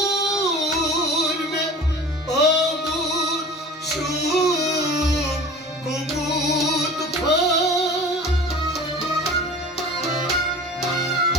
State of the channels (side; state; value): both; normal; correlation 0.40